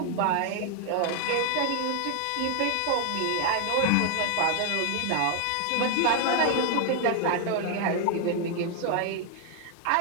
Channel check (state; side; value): different; both; correlation 0.00